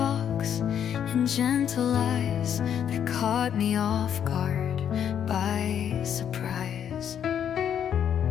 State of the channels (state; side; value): quieter; right; 9.0 dB